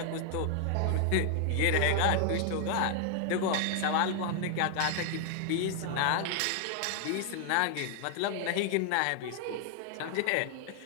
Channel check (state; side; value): different; both; correlation 0.00